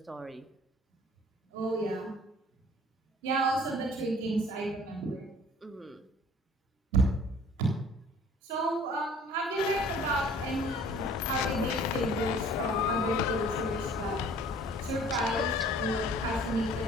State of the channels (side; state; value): both; normal; correlation 0.51